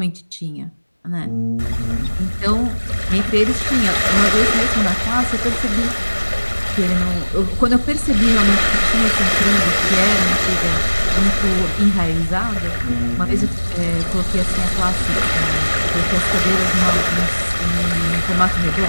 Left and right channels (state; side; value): inverted; both; correlation -1.00